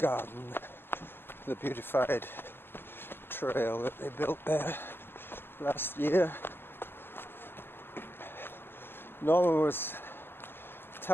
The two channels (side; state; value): right; late; 0.10 ms